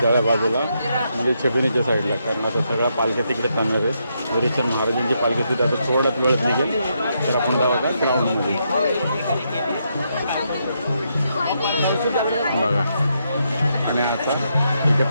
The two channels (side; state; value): both; inverted; correlation -0.79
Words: जाळ्या बाजूला म्हणजे छबिनीच्या साईडला, कारण आता सगळा पालख्या तिकडे थांबणार आहे. हरिचंद महाराजांची पालखी तिथे आता थोड्याच वेळात निघेल, तर आपण जाऊ का ग्राउंडमध्ये बघा. आणि आता इथे